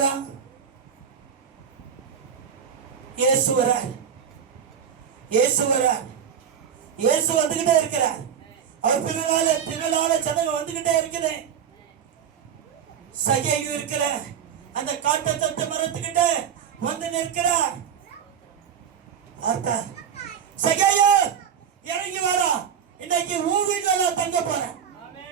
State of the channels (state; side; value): quieter; left; 8.1 dB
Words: இயேசு வரார், இயேசு வரார், இயேசு வந்துகிட்டே இருக்கிறார். அவர் பின்னால ஜனங்க வந்துகிட்டே இருக்குது. சகேயு இருக்கிற அந்த காட்டு தட்டு மரத்துக்கிட்ட வந்து நிற்கிறார். சகேயு இறங்கி வரா, இன்னைக்கு உன் வீட்டுல நான் தங்க போறேன்.